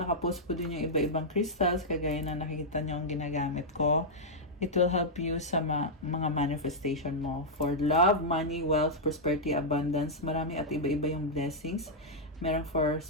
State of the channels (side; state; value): both; normal; correlation -0.06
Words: po din yung iba-ibang crystals, kagaya na nakikita nyo ang ginagamit ko. It will help you sa mga manifestation mo. For love, money, wealth, prosperity, abundance, marami at iba-iba yung blessings. Meron for